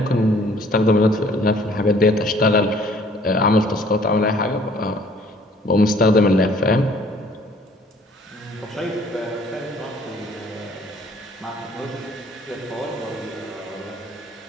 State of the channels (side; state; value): both; normal; correlation 0.57